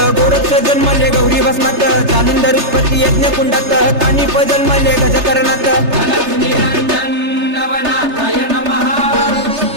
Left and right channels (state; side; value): late; left; 3.3 ms